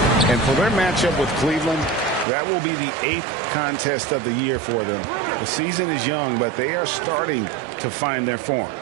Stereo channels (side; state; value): left; drops out; at 2.2 s